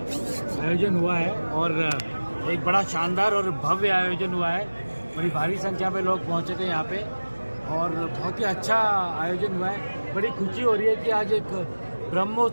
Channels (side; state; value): both; inverted; correlation -1.00